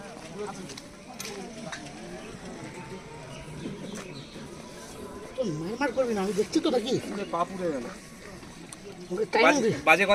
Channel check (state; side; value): identical; both; correlation 1.00